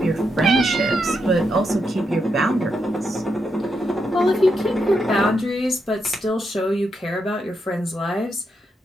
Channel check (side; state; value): both; normal; correlation 0.83